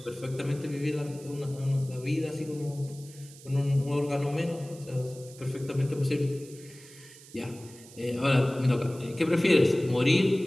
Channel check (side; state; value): right; noise; hiss, 20 dB below the sound